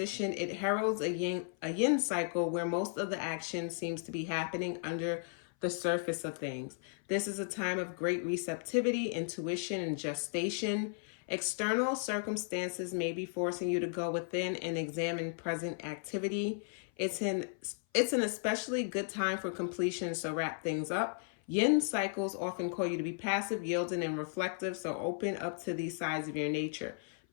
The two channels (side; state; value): right; silent; 54 dB below the other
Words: it heralds a yin cycle where most of the action seems to be happening under the surface of things. This is a time of great receptivity, intuition, and gestation. External circumstances may be forcing you to go within and examine present activity. It's an especially good time for completion, so wrap things up. Yin cycles often call you to be passive, yielding, and reflective, so open up to these sides of your nature.